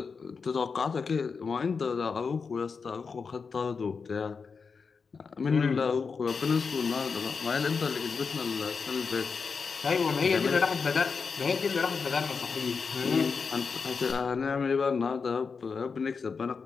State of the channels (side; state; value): right; quieter; 5.2 dB